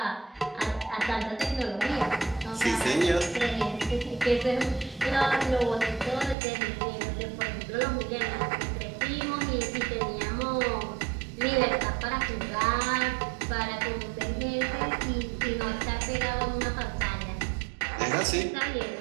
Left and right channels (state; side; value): drops out; left; at 6.4 s